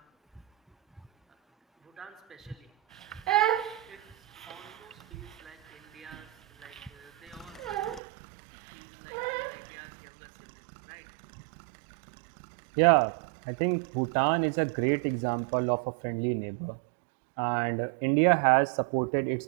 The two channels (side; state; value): left; drops out; at 8.0 s